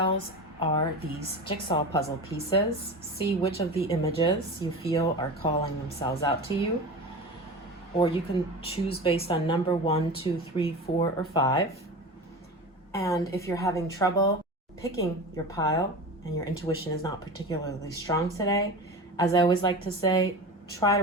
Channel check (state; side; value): normal; both; correlation 0.30